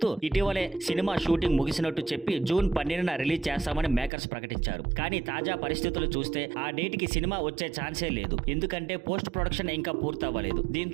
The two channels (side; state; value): left; drops out; at 4.1 s